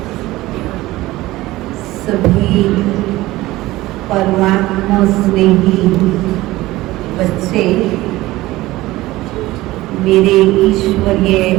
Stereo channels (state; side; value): quieter; left; 17.9 dB